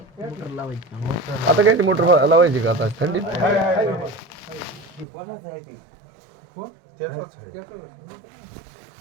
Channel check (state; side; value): drops out; left; at 5.1 s